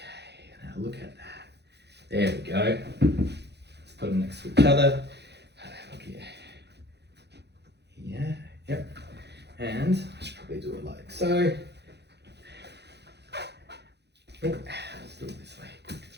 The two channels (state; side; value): late; left; 0.49 ms